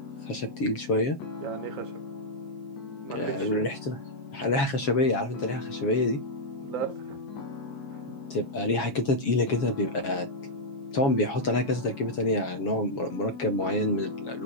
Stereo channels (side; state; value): right; late; 7.2 ms